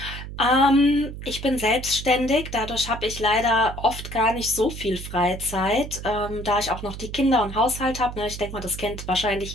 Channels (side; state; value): right; noise; hum, 10 dB below the sound